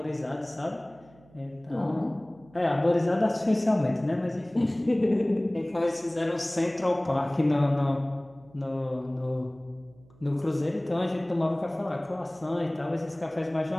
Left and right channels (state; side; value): noise; right; hum, 27 dB below the sound